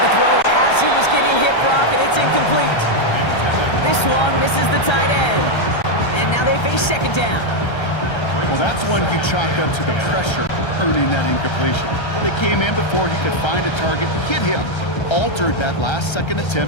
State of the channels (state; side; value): late; right; 1.3 ms